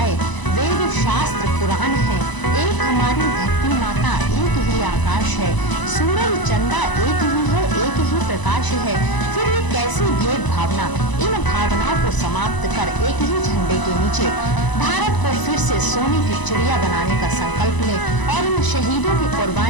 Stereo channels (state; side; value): late; right; 1.0 ms